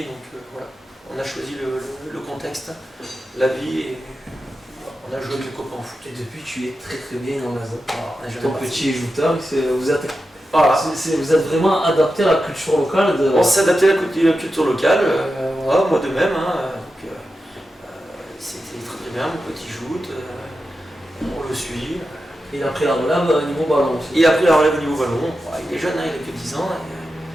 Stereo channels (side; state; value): both; normal; correlation 0.91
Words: donc voilà, on a choisi le contexte, la vie, et on a joué avec les copains au foot. Et depuis, tu es très bien dans la zone. Ton petit jouteur, vous êtes vraiment adapté à la culture locale. On s'est adapté à la culture locale, moi de même. C'était très bien, mon petit joute, on le suit. Il a pris la relève au niveau ballon aussi. Il a pris la relève au niveau ballon, il est jeune, il a que 10 ans.